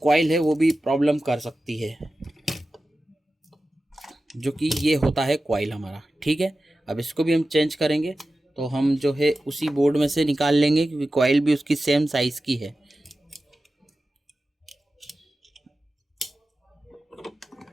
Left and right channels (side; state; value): both; normal; correlation 0.94